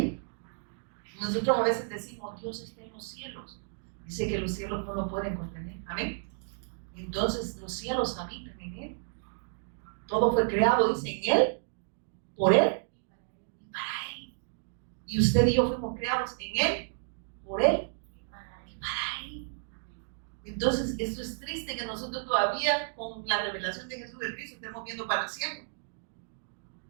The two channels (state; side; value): silent; left; digital silence